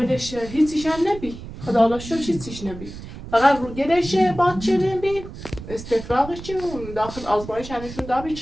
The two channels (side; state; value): right; noise; rumble, 13 dB below the sound